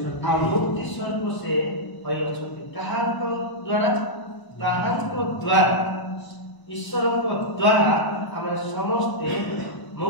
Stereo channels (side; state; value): right; late; 1.0 ms